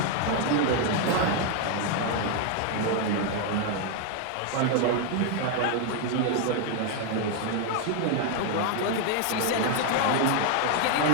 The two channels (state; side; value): different; both; correlation 0.01